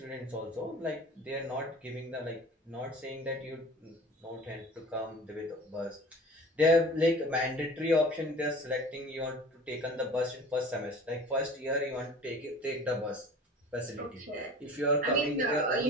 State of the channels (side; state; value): both; normal; correlation 0.42